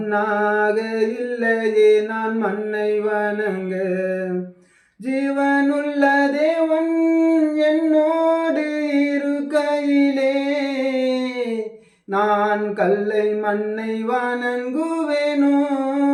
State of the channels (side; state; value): both; identical; correlation 1.00